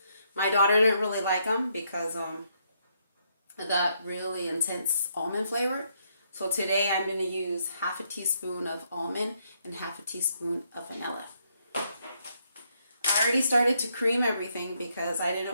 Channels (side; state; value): both; inverted; correlation -0.75